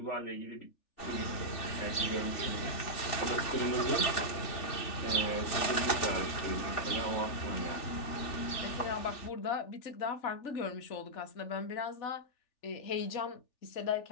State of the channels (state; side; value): late; right; 3.4 ms